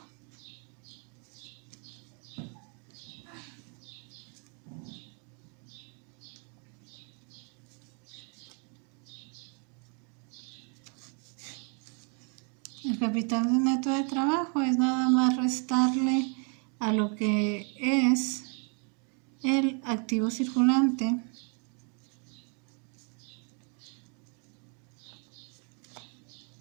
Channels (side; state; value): left; quieter; 38.3 dB